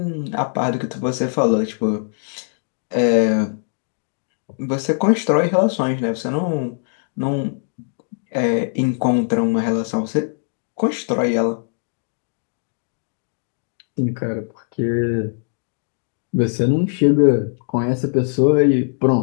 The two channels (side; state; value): right; silent; 63 dB below the other